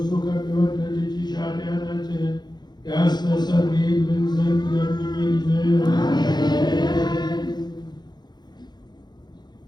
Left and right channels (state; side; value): late; right; 0.21 ms